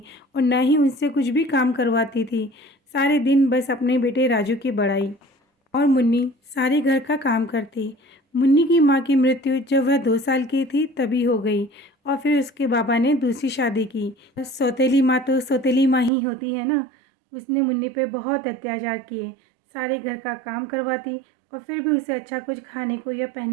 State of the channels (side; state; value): left; drops out; at 16.1 s